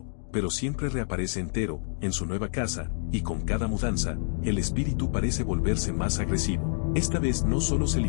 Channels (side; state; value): right; silent; digital silence